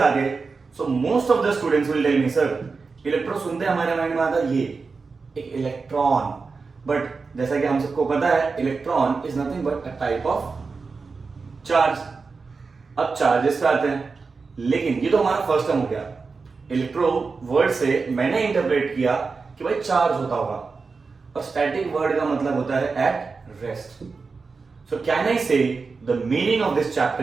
आ गई, so most of the students will tell me sir electro सुनते हमारे माइंड में आता ये एक इलेक्ट्रॉन. बट जैसा कि हम सबको पता है electron is nothing but a type of charge. अब चार्जेस पे आते हैं, लेकिन ये तो हमारा फर्स्ट टर्म हो गया. इलेक्ट्रो वर्ड से मैंने इंटरप्रेट किया कि भाई चार्ज होता होगा, और स्टैटिक वर्ड का मतलब होता है at rest. So can I say the meaning of this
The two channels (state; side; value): quieter; left; 4.5 dB